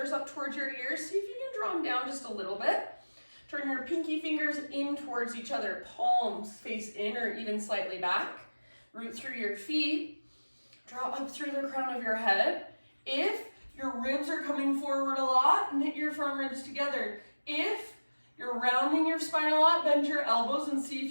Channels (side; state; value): both; inverted; correlation -1.00